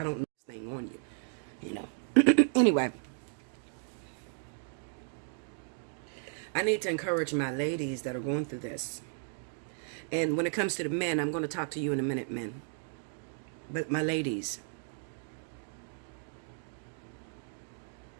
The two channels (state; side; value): silent; left; 55 dB below the other